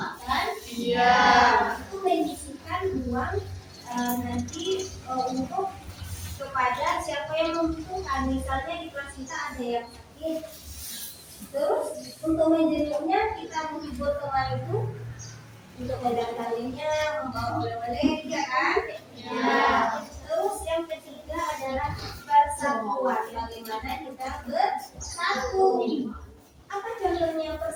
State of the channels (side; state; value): both; identical; correlation 1.00